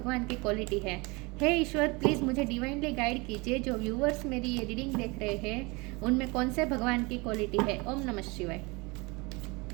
की क्वालिटी है। हे ईश्वर, प्लीज़ मुझे डिवाइनली गाइड कीजिए। जो व्यूअर्स मेरी ये रीडिंग देख रहे हैं उनमें कौन से भगवान की क्वालिटी है। ओम नमः शिवाय।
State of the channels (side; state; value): left; quieter; 26.7 dB